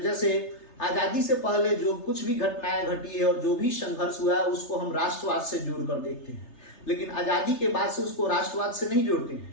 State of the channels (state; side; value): late; right; 3.3 ms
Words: जैसे आजादी से पहले जो कुछ भी घटनाएं घटी है और जो भी संघर्ष हुआ है उसको हम राष्ट्रवाद से जोड़कर देखते हैं, लेकिन आजादी के बाद से उसको राष्ट्रवाद से नहीं जोड़ते हैं।